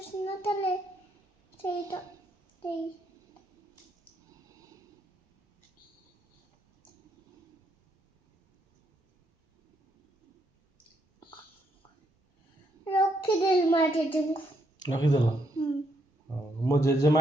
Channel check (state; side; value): normal; both; correlation 0.76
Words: ନଥିଲେ ସେଇଟା ସେଇ ରଖିଦେଲି ମା ଜେଜେଙ୍କୁ। ରଖିଦେଲ? ମୋ ଜେଜେମା